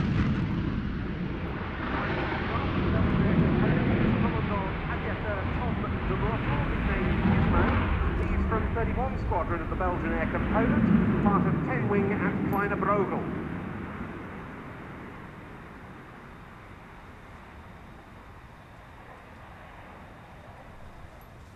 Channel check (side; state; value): both; identical; correlation 1.00